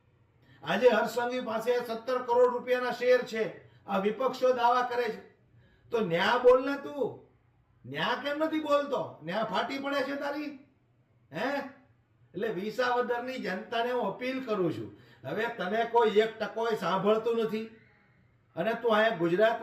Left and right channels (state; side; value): identical; both; correlation 1.00